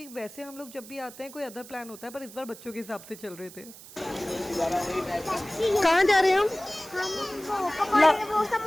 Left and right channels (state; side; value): noise; right; hiss, 17 dB below the sound